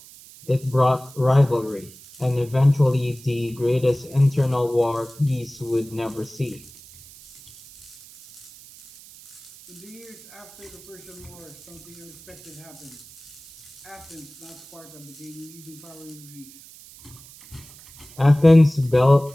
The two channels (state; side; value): noise; right; hiss, 20 dB below the sound